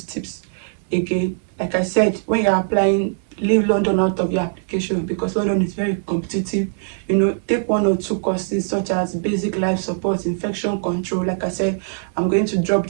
tips again. Like I said, when you're applying, leave London out of your application because London is very competitive. Take 1 or 2 courses such as basic life support, infection control. Like I said, I'm going to drop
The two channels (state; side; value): silent; left; 65 dB below the other